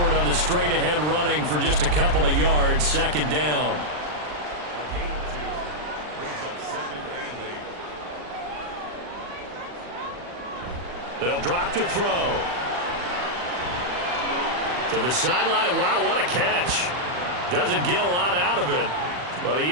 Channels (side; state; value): left; late; 40 ms